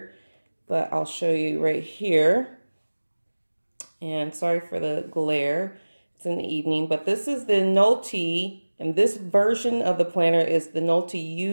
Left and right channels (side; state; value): both; inverted; correlation -1.00